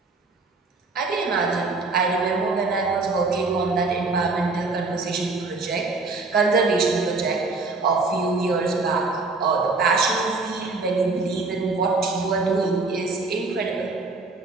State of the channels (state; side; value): quieter; left; 3.7 dB